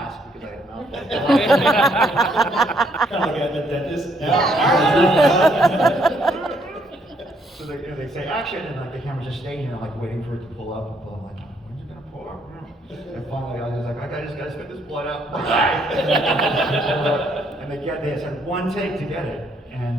because I had a mouth full of blood. Kind of like at the dentist. So they say action, and like the camera's just staying here, like waiting for it to pull up. I'm like, when's it gonna pull up? And finally, I was like, I just gotta spit this blood out. And they just had one take to get it, and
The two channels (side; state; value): both; normal; correlation 0.69